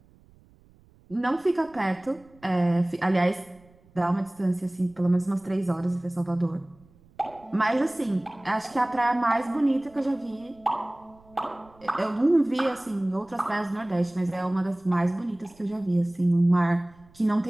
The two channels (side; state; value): right; noise; rumble, 28 dB below the sound